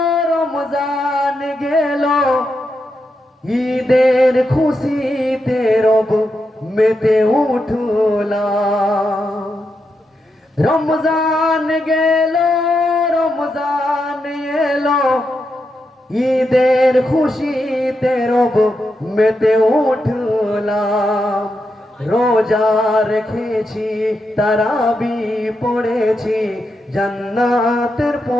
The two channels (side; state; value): both; normal; correlation 0.85